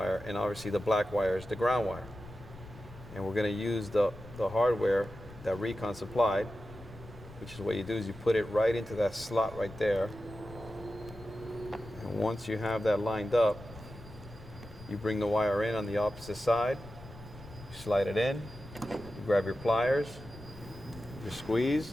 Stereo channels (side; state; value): left; noise; rumble, 17 dB below the sound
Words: and obviously the black wire is the ground wire. And we're going to use the hardware that RECON supplied, which is what you do is you put it right into that slot right there. And once you have that lined up, you bring the wire in on the opposite side, you slide it in, you grab your pliers, you squeeze.